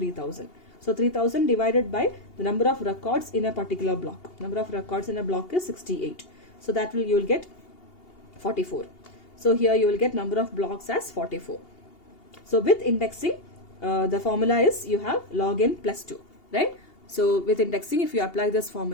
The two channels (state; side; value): late; right; 2.8 ms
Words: So 3000 divided by the number of records in a particular block. Number of records in a block is 68. So that you will get 44. So here you will get number of blocks as 44. So with indexing, the formula is you have log n plus 2, right? So with indexing, if you apply this